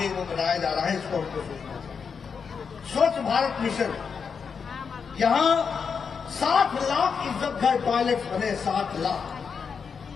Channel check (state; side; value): quieter; right; 6.0 dB